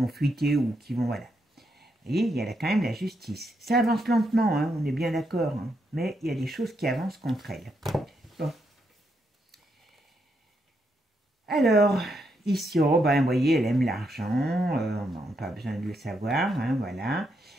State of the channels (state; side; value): normal; both; correlation 0.79